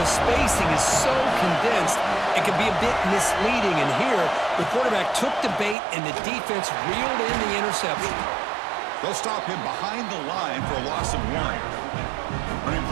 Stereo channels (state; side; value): drops out; left; at 5.8 s